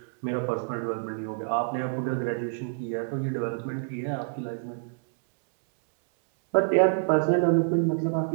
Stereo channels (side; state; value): left; silent; 60 dB below the other